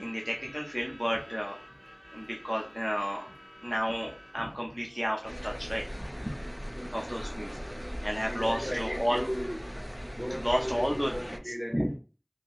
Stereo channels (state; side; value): identical; both; correlation 1.00